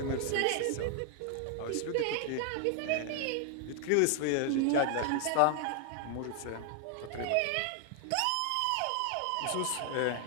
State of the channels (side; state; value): both; different; correlation 0.00